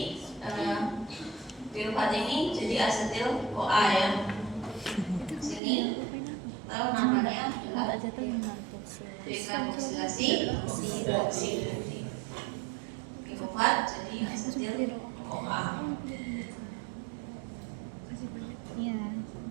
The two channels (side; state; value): left; drops out; at 5.6 s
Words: pirufat ini jadi asetil CoA ya. Sini tahu namanya adalah dekarboksilasi oksidasi. Pirufat jadi asetil CoA. Iya.